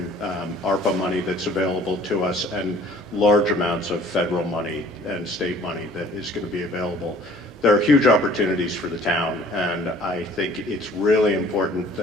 ARPA money that's available to us, and large amounts of federal money and state money that is going to be available. There are huge opportunities for the town, and I think it's really important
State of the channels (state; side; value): normal; both; correlation 0.53